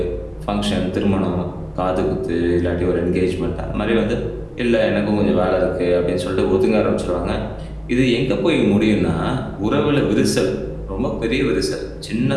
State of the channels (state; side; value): identical; both; correlation 1.00